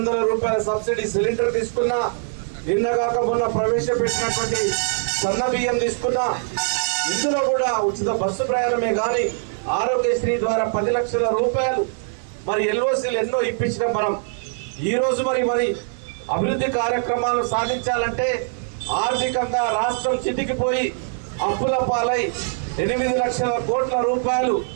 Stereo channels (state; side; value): silent; left; digital silence